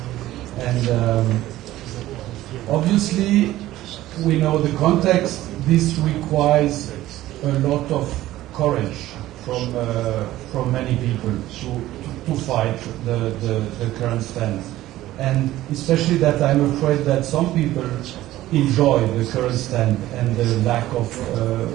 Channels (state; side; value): quieter; left; 15.3 dB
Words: And obviously, we know the context. This requires a lot of courage from many people to fight the current stance. And especially that I'm afraid that some people enjoy the current stand and the lack of